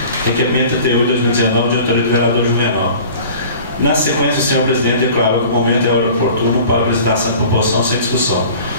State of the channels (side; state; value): both; inverted; correlation -0.44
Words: Requerimento 38 de 2019 de autoria do vereador Juvenal. Na sequência, o senhor presidente declarou que o momento é hora oportuno para a apresentação de proposição sem discussão.